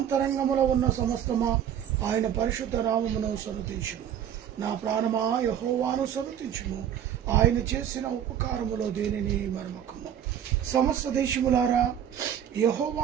ఉన్న సమస్తమా ఆయన పరిశుద్ధ నామమును సన్నతించుము. నా ప్రాణమా యెహోవాను సన్నతించుము, ఆయన చేసిన ఉపకారములో దేనిని మరమకము. సమస్త దేశములారా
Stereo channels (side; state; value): left; quieter; 9.6 dB